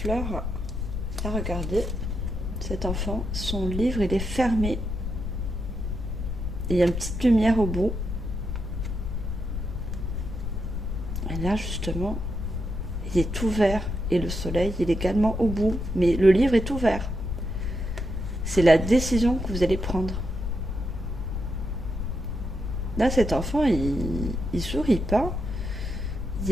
Là, regardez, cet enfant, son livre, il est fermé. Et il y a une petite lumière au bout. Et là, justement, il est ouvert. Et le soleil, il est également au bout. Mais le livre est ouvert. C'est la décision que vous allez prendre. Là, cet enfant, il sourit pas. Il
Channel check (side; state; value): left; noise; rumble, 3 dB below the sound